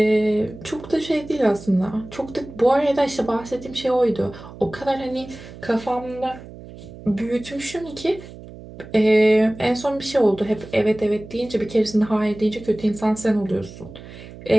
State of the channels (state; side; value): noise; right; hum, 16 dB below the sound